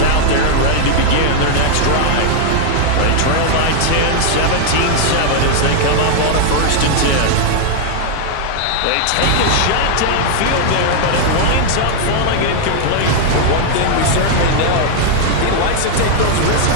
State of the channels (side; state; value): both; different; correlation 0.00